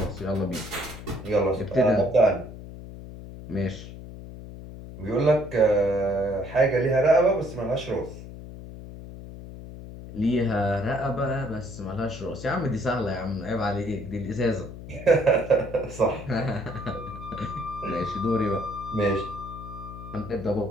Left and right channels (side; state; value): left; noise; hum, 13 dB below the sound